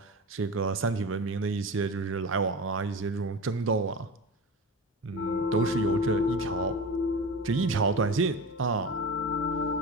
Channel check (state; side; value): normal; both; correlation 0.29